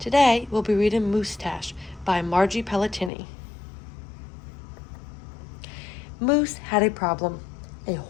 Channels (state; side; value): drops out; right; at 3.1 s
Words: we'll be reading Moosetache by Margie Pelletini. Moose had a problem, a